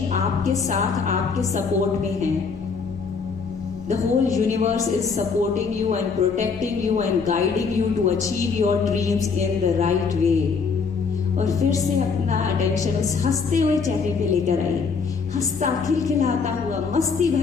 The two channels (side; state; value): right; quieter; 5.2 dB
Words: साथ, आपके सपोर्ट में है। The whole universe is supporting you and protecting you and guiding you to achieve your dreams in the right way. और फिर से अपना अटेंशन उस हंसते हुए चेहरे पे लेकर आइए, हंसता खिलखिलाता हुआ मस्ती